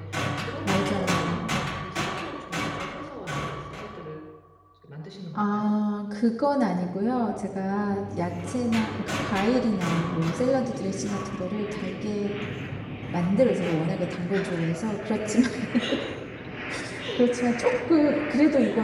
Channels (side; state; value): both; identical; correlation 1.00